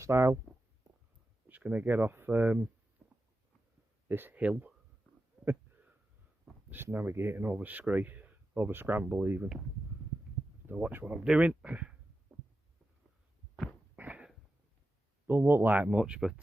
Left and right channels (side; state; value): both; normal; correlation 0.91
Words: Just going to get off this hill. Just navigating over Scree, over Scramble even. To watch what I'm doing. Don't look like much, but